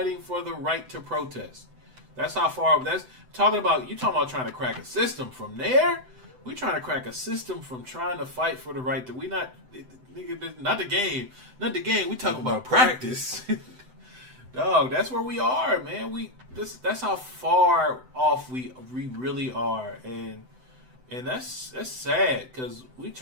for the right to protest. That's how far. That's talking about. You talking about trying to crack a system from there? We trying to crack a system from trying to fight for the right to. We not, nigga, not the game, not the game. We talking about practice. Dog, that's where we are, man. That's how far off we really are, and that's sad because we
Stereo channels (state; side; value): late; left; 7.9 ms